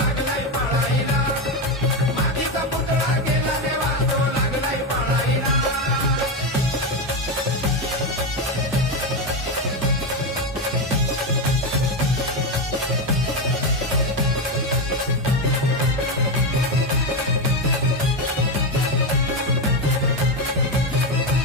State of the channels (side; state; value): both; normal; correlation 0.12